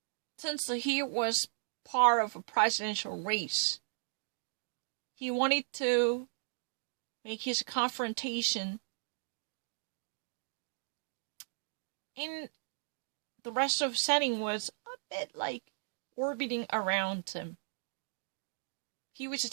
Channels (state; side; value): silent; left; digital silence